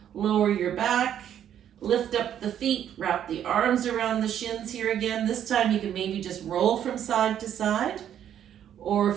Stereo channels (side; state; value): left; quieter; 10.0 dB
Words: lower your back. Lift up the feet, wrap the arms around the shins here again. This time you can maybe just roll from side to side. Or